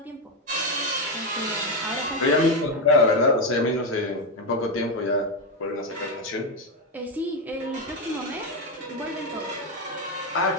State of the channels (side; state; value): both; normal; correlation 0.08